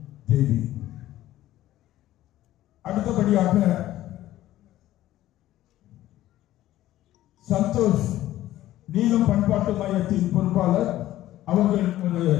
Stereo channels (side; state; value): right; quieter; 14.4 dB